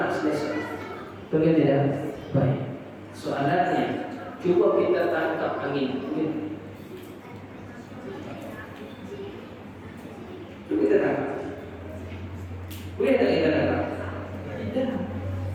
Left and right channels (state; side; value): identical; both; correlation 1.00